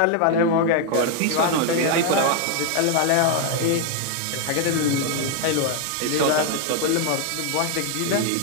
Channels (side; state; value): both; different; correlation 0.00